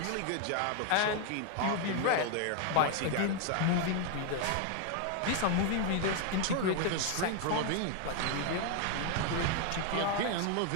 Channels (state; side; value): different; both; correlation 0.00